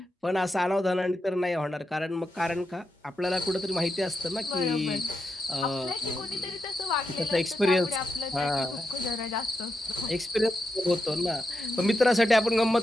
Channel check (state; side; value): normal; both; correlation 0.86